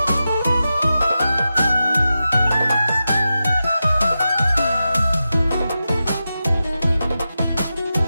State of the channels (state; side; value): inverted; both; correlation -0.91